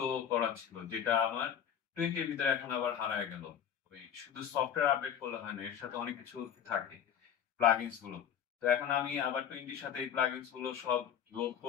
করা ছিল, যেটা আমার 20 এর ভিতরে এখন আবার হারায় গেল। ওই শুধু সফটওয়্যার আপডেট করলে হয় না, এর সাথে অনেক কিছু থাকে, প্লাগইনস গুলো। তো এখন আমি আবার 20 এর সাথে এই প্লাগইনস গুলো সব লোড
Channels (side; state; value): right; quieter; 8.8 dB